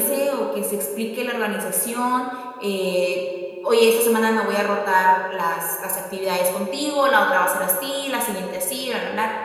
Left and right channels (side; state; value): both; identical; correlation 1.00